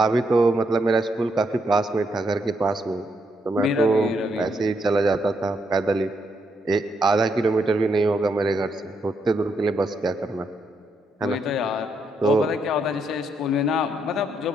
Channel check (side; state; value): both; normal; correlation 0.78